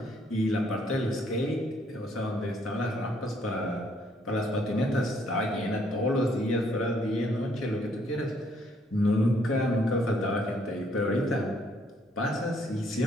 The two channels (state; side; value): normal; both; correlation 0.67